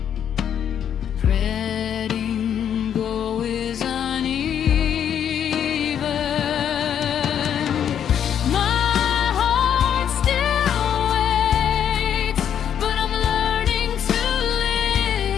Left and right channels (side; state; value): right; quieter; 9.0 dB